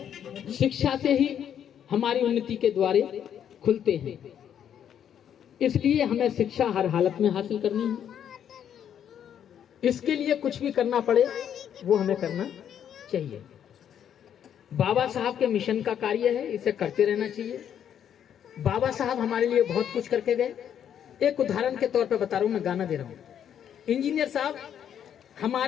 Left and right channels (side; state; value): right; quieter; 9.2 dB